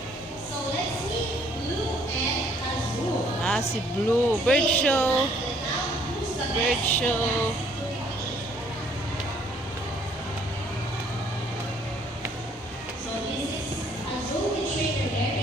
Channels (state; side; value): normal; both; correlation 0.63